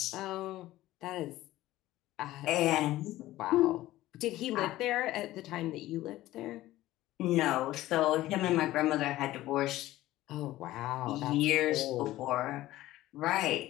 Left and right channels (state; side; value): quieter; right; 15.9 dB